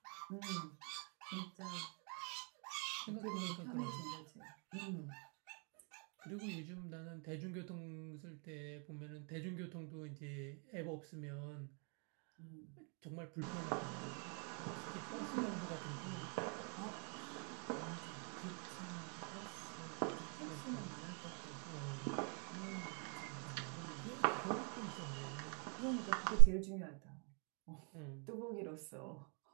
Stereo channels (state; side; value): quieter; left; 37.4 dB